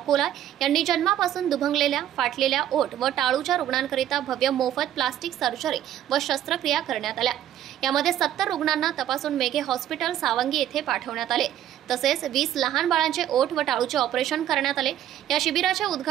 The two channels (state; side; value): quieter; left; 11.5 dB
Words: यांनी जन्मापासून दुभंगलेल्या, फाटलेल्या ओठ व टाळूच्या रुग्णांकरिता भव्य मोफत प्लास्टिक सर्जरी व शस्त्रक्रिया करण्यात आल्या. यामध्ये 70 रुग्णांना तपासून मेघे हॉस्पिटल सावंगी येथे पाठवण्यात आले. तसेच 20 लहान बाळांचे ओठ व टाळूचे ऑपरेशन करण्यात आले. या शिबिराचे